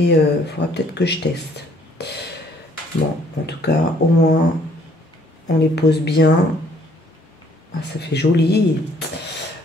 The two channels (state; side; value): normal; both; correlation 0.62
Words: il faudra peut-être que je teste. Bon, en tout cas, au moins, on les pose bien. Ah, ça fait joli.